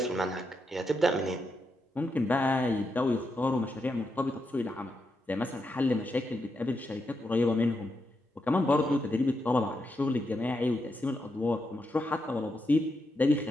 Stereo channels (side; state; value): both; normal; correlation 0.84